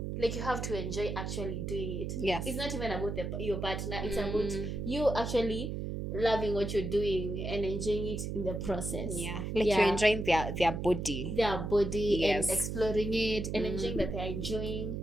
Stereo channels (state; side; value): noise; right; hum, 4 dB below the sound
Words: Like you have to enjoy actually doing it. Yes. It's not even about your partner. It's about you actually loving what you're doing and enjoying it in the process. Yeah. Like you're enjoying their body. Their body and exploring it and enjoying that they're enjoying.